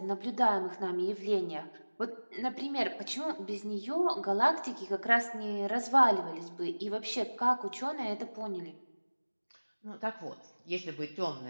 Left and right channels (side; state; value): both; inverted; correlation -1.00